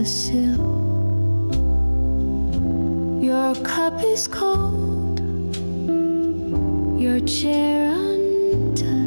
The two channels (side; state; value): both; inverted; correlation -1.00